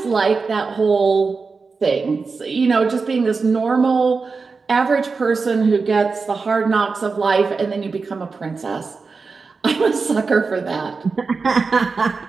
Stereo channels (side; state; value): left; quieter; 4.5 dB